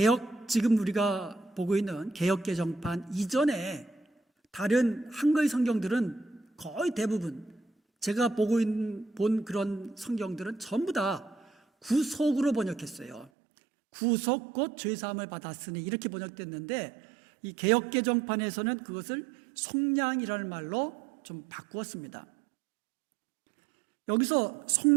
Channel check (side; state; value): left; drops out; at 13.3 s